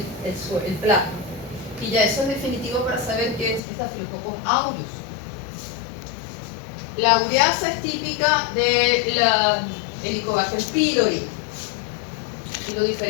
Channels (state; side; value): drops out; right; at 3.6 s